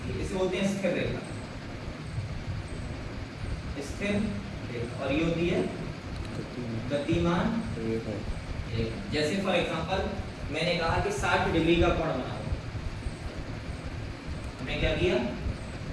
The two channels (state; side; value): identical; both; correlation 1.00